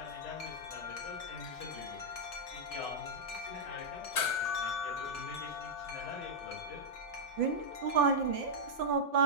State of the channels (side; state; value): both; normal; correlation -0.06